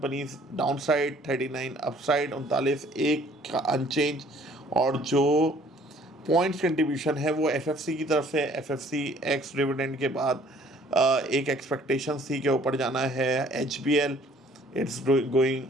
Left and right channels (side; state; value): both; normal; correlation 0.57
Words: down side, 39 up side, 39 एक अनचेंज, और जो पॉइंट्स कंट्रीब्यूशन है वो FFC की तरफ से। FFC एक्स डिविडेंड के बाद एक एक्सपेक्टेशंस थी कि ऊपर जाना है। HBL it's